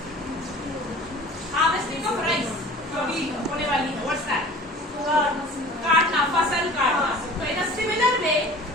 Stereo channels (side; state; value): both; normal; correlation 0.44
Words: Harvesting of rice. कभी होने वाली है. What's that? काटना, फसल काटना. So in a similar way,